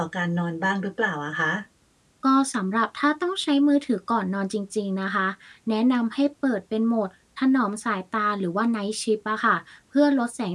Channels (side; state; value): both; identical; correlation 1.00